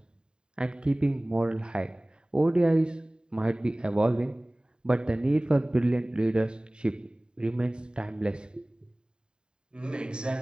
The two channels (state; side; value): late; left; 0.048 ms